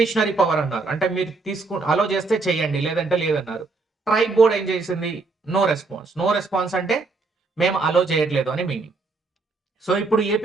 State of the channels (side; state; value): left; quieter; 3.9 dB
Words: పవర్ అన్నారు. అంటే మీరు అలో చేస్తే చేయండి, లేదంటే లేదన్నారు. ట్రైబ్ బోర్డ్ ఏం చేసింది? No response. నో రెస్పాన్స్ అంటే మేము అలో చేయట్లేదు అని మీనింగ్. సో ఇప్పుడు